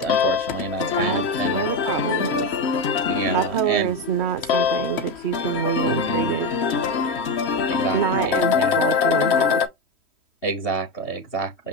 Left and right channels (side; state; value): right; late; 3.1 ms